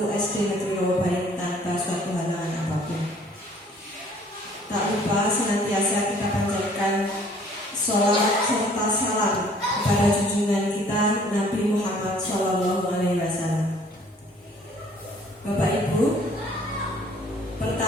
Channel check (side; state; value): both; normal; correlation 0.57